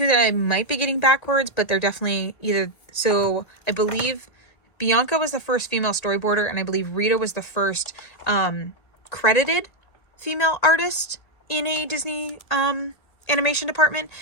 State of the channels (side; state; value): right; late; 1.9 ms